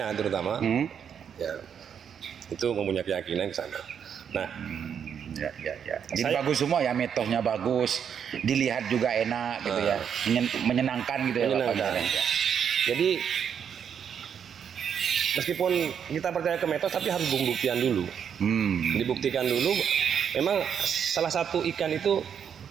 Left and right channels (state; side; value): quieter; left; 7.9 dB